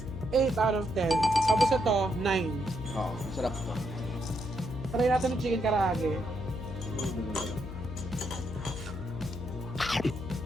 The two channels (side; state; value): left; noise; hum, 8 dB below the sound